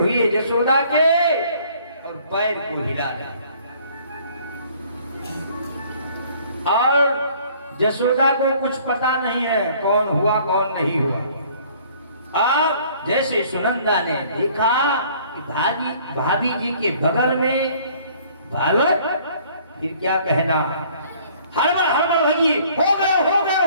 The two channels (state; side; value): inverted; both; correlation -0.57